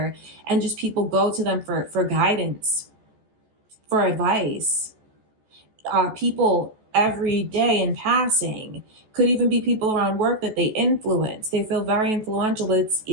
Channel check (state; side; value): late; left; 14 ms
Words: and just people go to them for guidance, for advice. People every day in passing, could even be people around work that they influence. They feel very influential, but